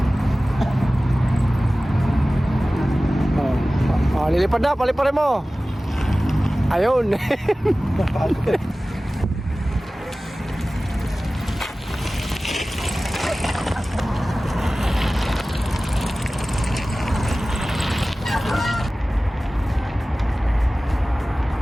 Lilipad na, paliparin mo. Ayun.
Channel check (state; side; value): normal; both; correlation 0.97